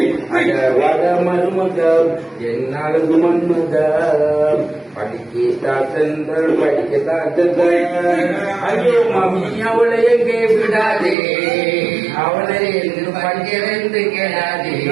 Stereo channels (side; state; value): left; drops out; at 11.2 s